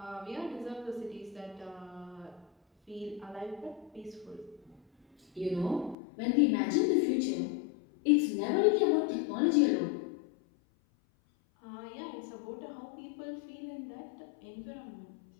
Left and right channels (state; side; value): drops out; right; at 6.0 s